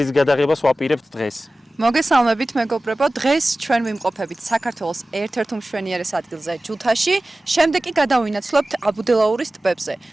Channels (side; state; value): both; normal; correlation 0.96